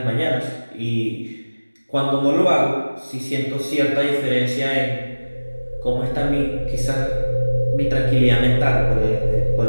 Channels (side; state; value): both; inverted; correlation -1.00